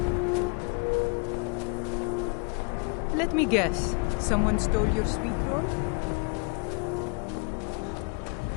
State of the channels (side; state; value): right; quieter; 34.7 dB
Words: Let me guess. Someone stole your sweet roll?